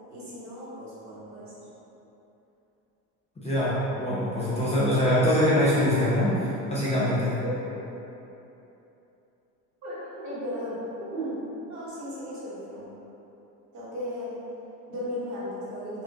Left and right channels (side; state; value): both; normal; correlation 0.32